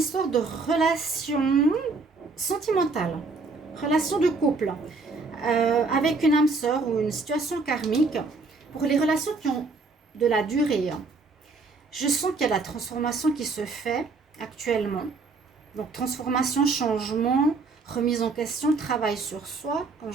de relation sentimentale, relation de couple, avec une âme sœur ou une situation karmique. Pour les relations qui ont de la durée, je sens qu'il y a la transformation qui se fait actuellement. Donc transformation, changement, remise en question, travail sur soi, comme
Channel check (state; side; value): quieter; left; 4.0 dB